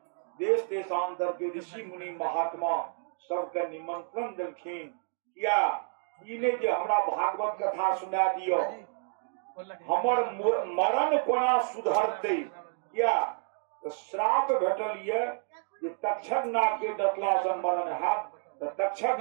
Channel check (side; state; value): left; silent; 58 dB below the other